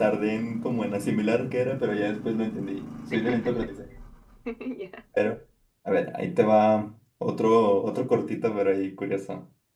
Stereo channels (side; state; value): both; identical; correlation 1.00